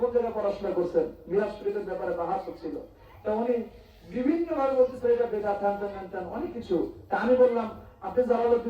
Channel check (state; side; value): identical; both; correlation 1.00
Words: জায়গায় পড়াশোনা করছেন, মিলাদ শরীফের ব্যাপারে বাহাস হচ্ছিল, তা উনি বিভিন্ন ভাবে বলতেছে এটা বেদাত, অনেক কিছু। তা আমি বললাম আপনি